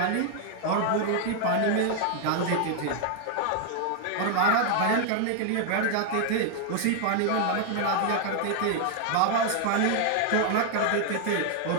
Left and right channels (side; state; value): both; different; correlation 0.00